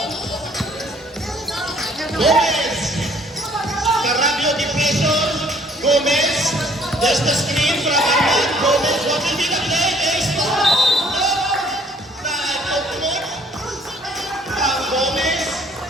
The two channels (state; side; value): normal; both; correlation 0.59